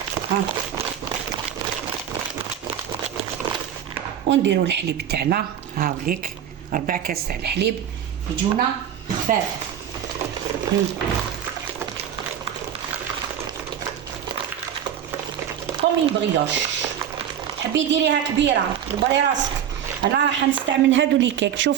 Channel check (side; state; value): left; quieter; 9.4 dB